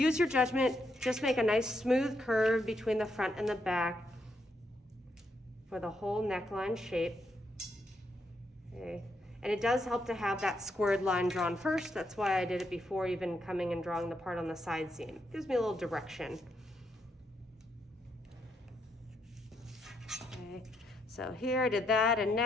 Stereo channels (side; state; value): both; normal; correlation 0.78